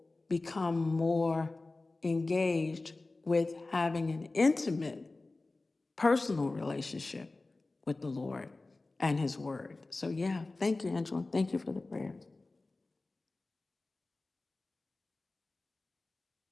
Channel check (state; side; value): quieter; right; 3.2 dB